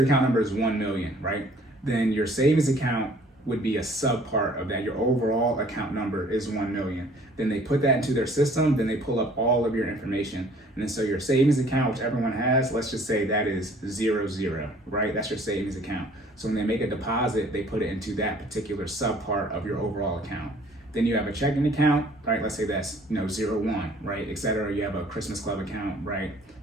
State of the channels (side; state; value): both; normal; correlation 0.55